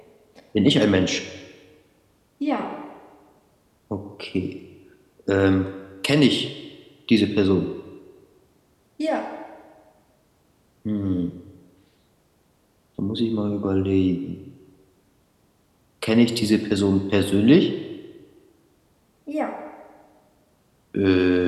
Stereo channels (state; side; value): identical; both; correlation 1.00